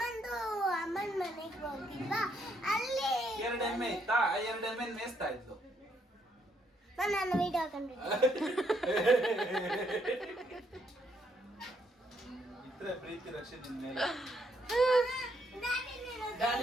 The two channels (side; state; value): both; normal; correlation 0.73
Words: ಮನೆಗೆ ಹೋಗಿಲ್ವಾ, ಅಲ್ಲಿ 2 ಎಮ್ಮೆ ಇತ್ತಾ? 2 ಎಮ್ಮೆ ಮೇಯಿಸ್ತಾ ಇದ್ಲು. ನಾನು ವಿಡಿಯೋ ಹಾಕೊಂಡಿದ್ದೆ. ಇದ್ರೆ ಪ್ರೀತಿ ರಕ್ಷೆ ನಿನ್ ಮೇಲೆ. ಡ್ಯಾಡಿ